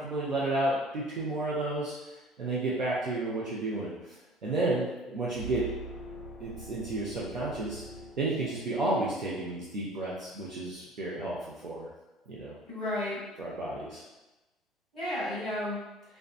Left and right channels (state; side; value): normal; both; correlation 0.45